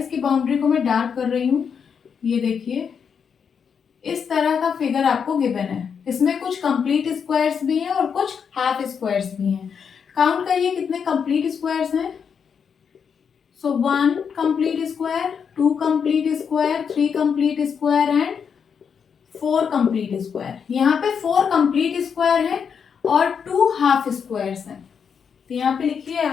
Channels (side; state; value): right; quieter; 6.8 dB